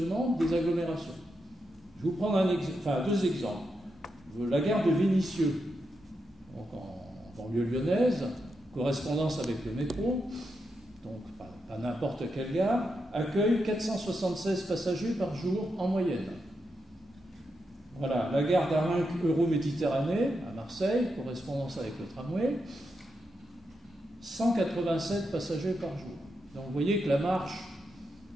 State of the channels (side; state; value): both; normal; correlation 0.85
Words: des agglomérations. Je vais vous prendre deux exemples. La gare de Vénissieux, donc en banlieue lyonnaise, correspondance avec le métro, donc pas n'importe quelle gare, accueille 476 passagers par jour en moyenne. Voilà, la gare d'Arinque Euro-Méditerranée à Marseille, correspondance avec le tramway, 187 passagers par jour. Donc vous voyez que la marche